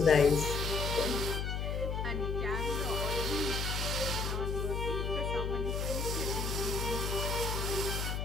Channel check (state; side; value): noise; left; hum, 1 dB below the sound